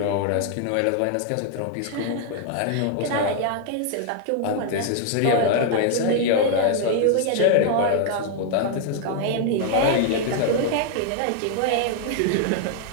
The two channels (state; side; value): different; both; correlation 0.00